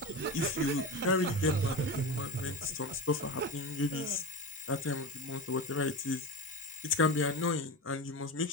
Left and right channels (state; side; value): normal; both; correlation 0.22